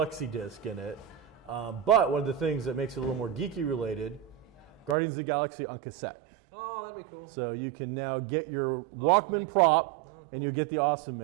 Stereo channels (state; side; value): drops out; left; at 5.0 s